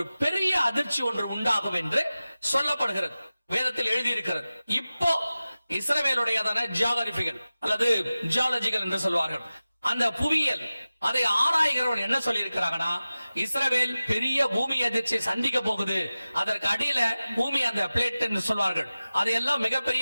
பெரிய அதிர்ச்சி ஒன்று உண்டாகும் என்று சொல்லப்படுகிறது, வேதத்தில் எழுதியிருக்கிறது. இப்போ இஸ்ரவேலுடையதான ஜியோகிராபிகள் அல்லது ஜியாலஜிகள் என்று சொல்வார்கள், அந்த புவியியல், அதை ஆராய்கிறவன் என்ன சொல்லி இருக்கிறாங்கன்னா, இஸ்ரவேல் பெரிய பூமி அதிர்ச்சியை சந்திக்க போகுது. அதற்கு அடியில பூமி, அந்த பிளேட் என்று சொல்வார்கள், அதையெல்லாம்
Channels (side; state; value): both; inverted; correlation -0.96